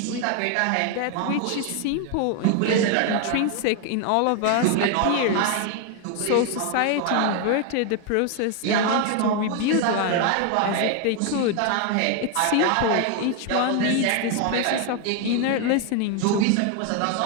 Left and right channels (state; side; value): different; both; correlation 0.01